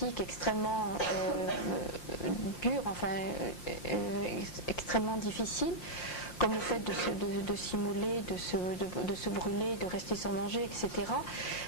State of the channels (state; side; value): late; right; 5.7 ms